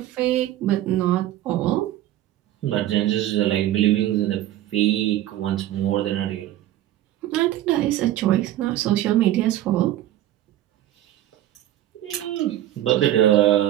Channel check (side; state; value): left; quieter; 13.3 dB